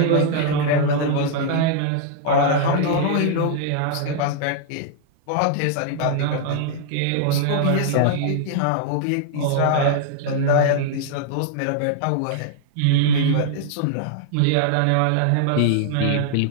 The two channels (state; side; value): different; both; correlation -0.01